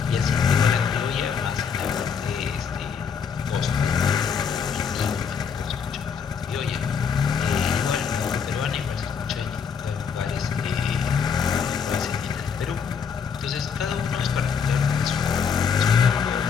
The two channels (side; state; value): right; quieter; 6.6 dB